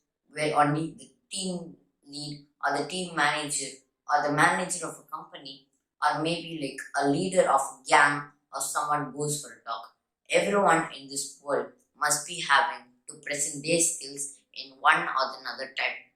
where only the team lead or the team manager or the manager of a company or maybe like a leader of a gang or someone goes for a talk. Everyone in this world must be having to present their skills in one or another type.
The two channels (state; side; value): identical; both; correlation 1.00